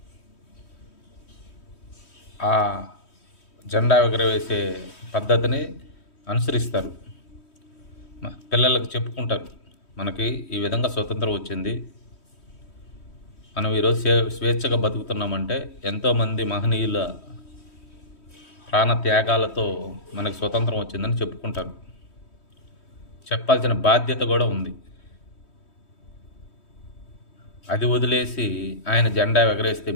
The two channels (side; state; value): right; late; 3.1 ms